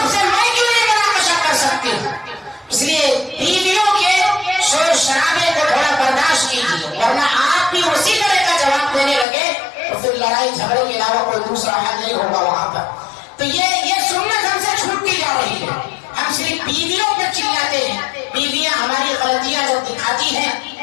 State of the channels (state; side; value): drops out; right; at 9.2 s